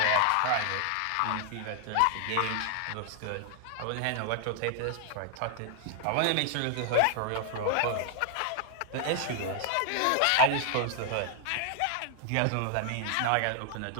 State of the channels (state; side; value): different; both; correlation 0.00